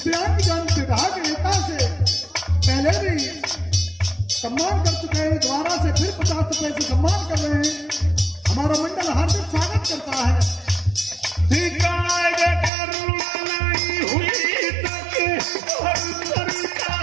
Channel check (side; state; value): left; drops out; at 12.7 s